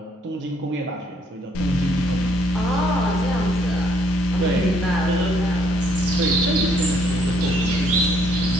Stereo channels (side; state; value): both; normal; correlation 0.67